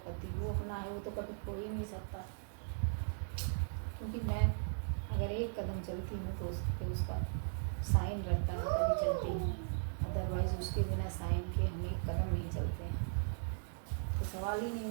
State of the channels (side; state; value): left; silent; digital silence